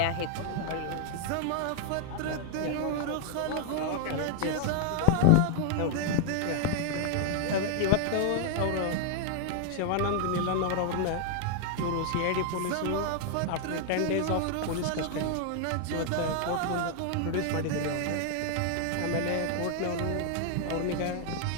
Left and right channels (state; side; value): different; both; correlation 0.00